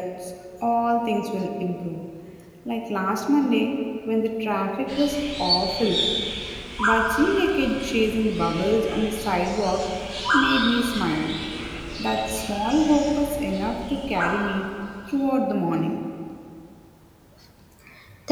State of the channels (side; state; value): both; identical; correlation 1.00